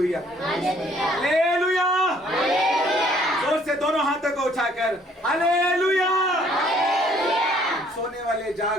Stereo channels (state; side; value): normal; both; correlation 0.62